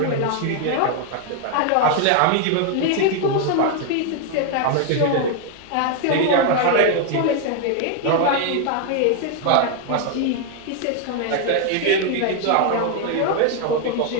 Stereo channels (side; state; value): both; different; correlation 0.01